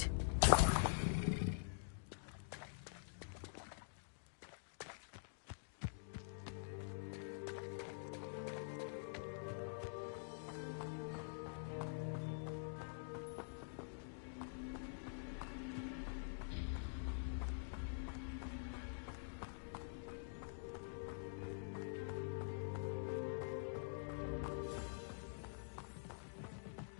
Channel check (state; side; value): silent; right; digital silence